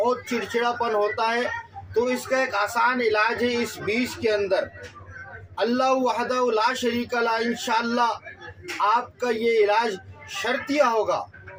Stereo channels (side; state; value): both; identical; correlation 1.00